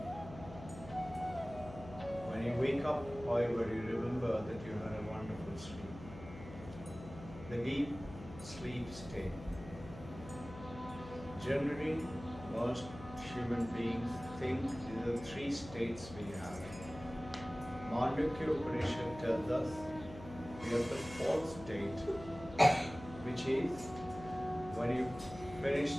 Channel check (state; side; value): noise; left; hum, 14 dB below the sound